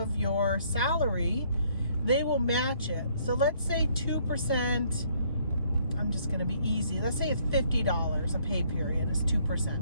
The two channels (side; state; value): both; inverted; correlation -0.65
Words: your salary, they will match it. So let's say 2%, I'm just going to be easy. Let's say it's $50 a pay period is